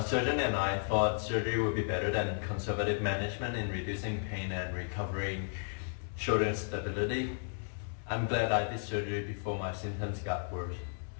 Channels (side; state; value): right; silent; 55 dB below the other